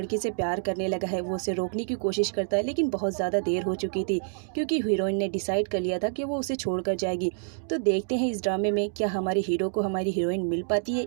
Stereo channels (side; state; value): left; silent; digital silence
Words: से प्यार करने लगा है। वो उसे रोकने की कोशिश करता है लेकिन बहुत ज़्यादा देर हो चुकी थी, क्योंकि हीरोइन ने डिसाइड कर लिया था कि वो उसे छोड़कर जाएगी। तो देखते हैं इस ड्रामे में क्या हमारे हीरो को हमारी हीरोइन मिल पाती है